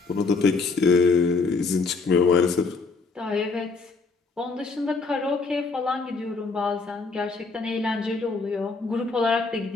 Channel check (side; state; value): right; quieter; 4.2 dB